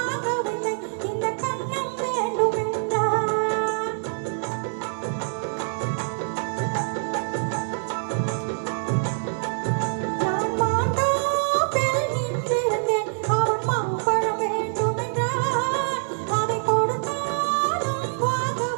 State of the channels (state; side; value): silent; left; digital silence